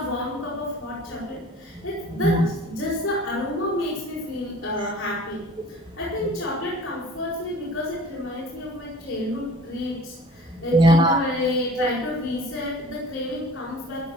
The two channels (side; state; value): both; normal; correlation 0.45